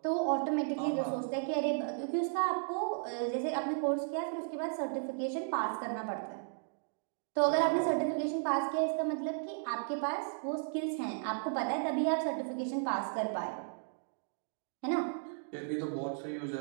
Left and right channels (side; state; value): left; silent; digital silence